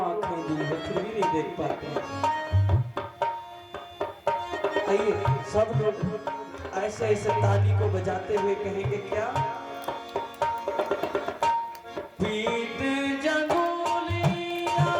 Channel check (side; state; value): both; identical; correlation 1.00